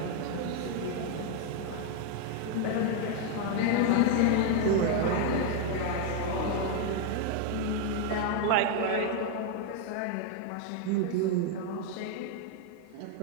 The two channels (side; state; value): both; different; correlation 0.01